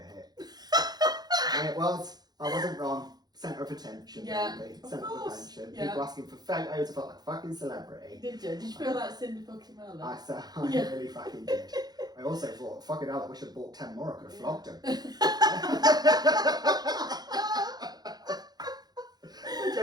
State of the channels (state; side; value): late; left; 0.19 ms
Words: hit. And it was. I wasn't wrong. Centre of attention. Really. Centre of attention. People asking for photos. I felt like a fucking celebrity. Did you? Did you feel like Cindy fucking Merlin? I said, I really fucking did. I also thought, fucking hell, I wish I'd bought 10 more. I could have flogged him. I